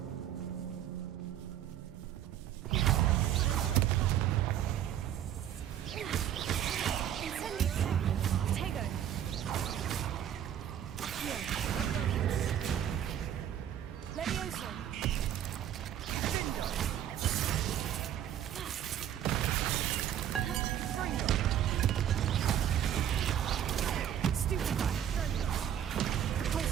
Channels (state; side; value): quieter; left; 10.5 dB